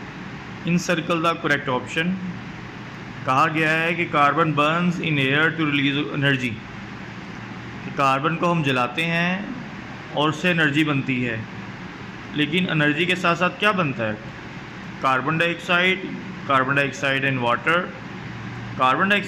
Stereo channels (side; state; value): both; identical; correlation 1.00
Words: इन सर्कल द करेक्ट ऑप्शन कहा गया है कि carbon burns in air to release energy. Carbon को हम जलाते हैं और उससे एनर्जी बनती है, लेकिन एनर्जी के साथ साथ क्या बनता है? Carbon dioxide and water, carbon